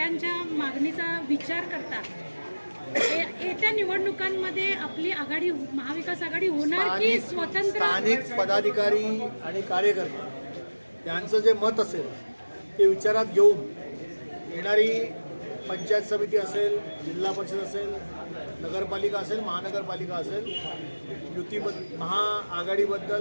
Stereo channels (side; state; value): both; inverted; correlation -1.00